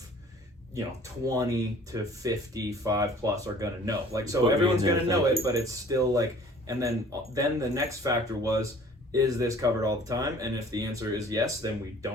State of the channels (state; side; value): normal; both; correlation 0.51